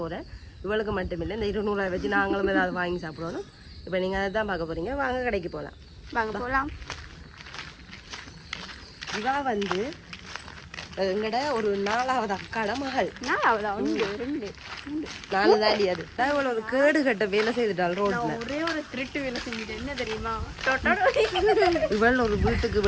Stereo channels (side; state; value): both; identical; correlation 1.00